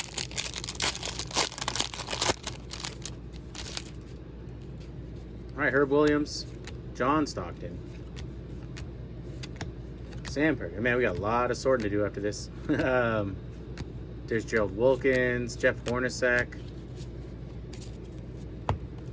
All right, Herb Williams. John Stockton. Samford. Man, we got a lot of sorting to do after this. There's Gerald Wilkins, Jeff Hornacek.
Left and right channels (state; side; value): identical; both; correlation 1.00